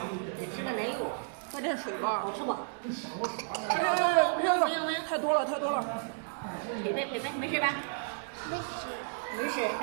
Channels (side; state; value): left; silent; digital silence